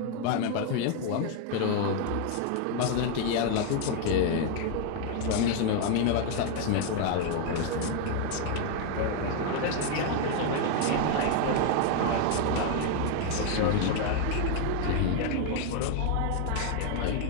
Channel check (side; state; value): both; different; correlation 0.00